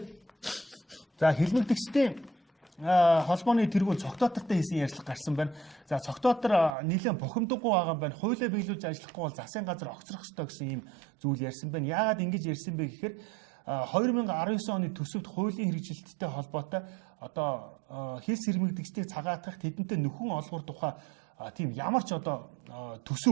за хэлмэгдэгчдийн холбооны тэргүүн цогтоотортой хийсэн ярилцлага гарсан байна. За цогтоотор нэлээд бухимдаггүй байгаа юм байна. Хуулиа биелүүлж ажиллахгүй бол засгийн газар огцрох ёстой гэсэн ийм зүйл ярьсан байна. Яагаад ингэж ярьсан бэ гэхээр 2019 оны төсөвт хуулийн хэрэгжилттэй холбоотой одоо хэлс хэрмэгдэгчдийг цагаатгах, тэдэнтэй нөхөн олгох тухай тийм ямар ч одоо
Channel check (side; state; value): left; drops out; at 6.8 s